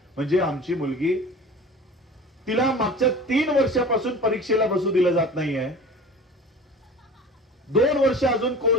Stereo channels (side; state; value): both; normal; correlation 0.39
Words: म्हणजे आमची मुलगी, तिला मागच्या 3 वर्षापासून परीक्षेला बसू दिलं जात नाहीये, 2 वर्ष अजून